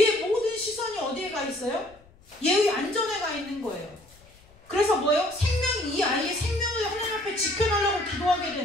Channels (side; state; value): left; noise; rumble, 27 dB below the sound